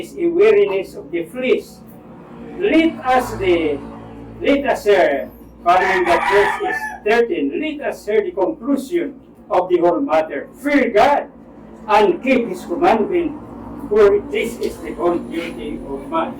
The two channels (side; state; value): both; identical; correlation 1.00